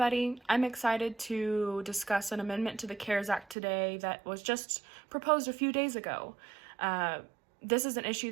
I'm excited to discuss an amendment to the CARES Act today that was just proposed a few days ago. This is an issue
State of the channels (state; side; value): drops out; left; at 3.6 s